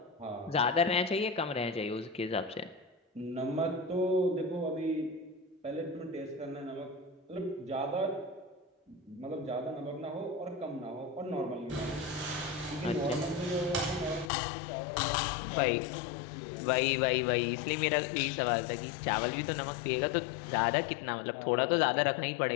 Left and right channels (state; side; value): drops out; right; at 14.3 s